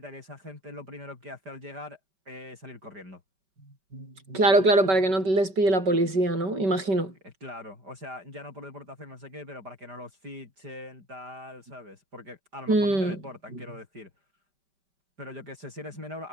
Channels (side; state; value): left; late; 5.3 ms